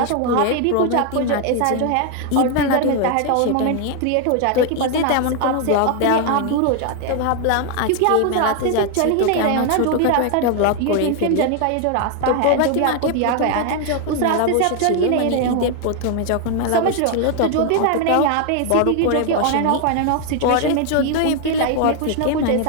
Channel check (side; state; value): both; different; correlation 0.00